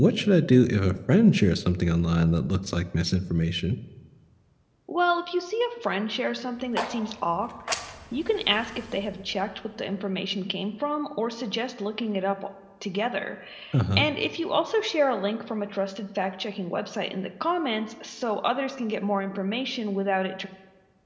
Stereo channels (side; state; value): both; identical; correlation 1.00